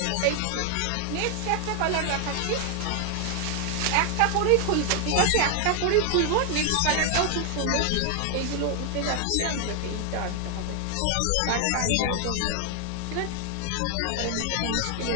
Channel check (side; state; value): both; different; correlation 0.00